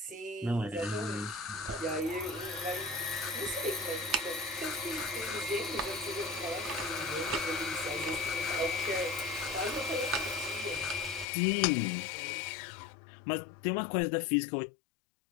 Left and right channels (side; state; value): right; drops out; at 11.2 s